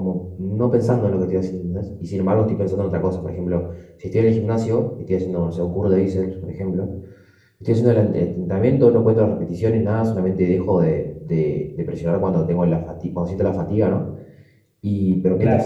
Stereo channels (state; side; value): identical; both; correlation 1.00